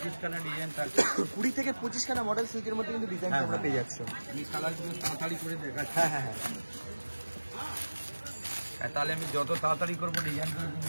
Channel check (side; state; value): both; inverted; correlation -1.00